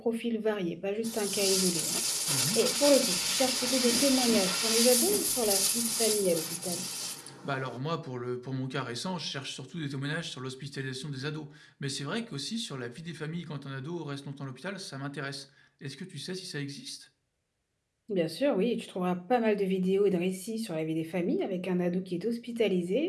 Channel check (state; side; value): identical; both; correlation 1.00